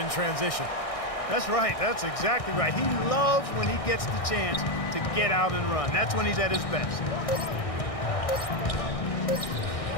transition. That's right. That's exactly right. He loves when he gets the chance to get out and run. That's when he's at his best.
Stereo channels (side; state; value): right; late; 1.6 ms